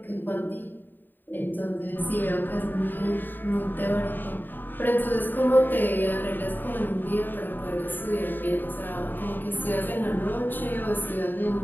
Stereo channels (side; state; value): right; late; 0.091 ms